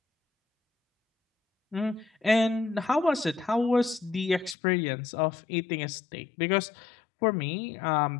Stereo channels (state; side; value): drops out; right; at 4.5 s